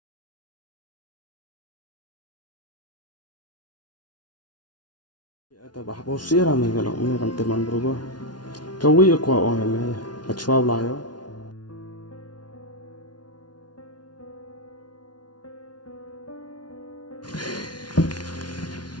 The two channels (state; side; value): late; right; 0.70 ms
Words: Atau bah bosir ame kalau ame kan teman berubah. KWI KWAH IONG ame achwa layo.